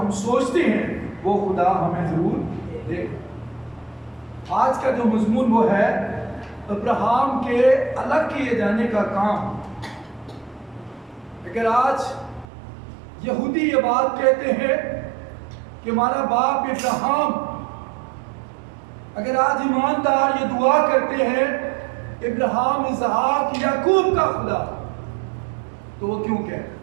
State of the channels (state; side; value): drops out; left; at 12.5 s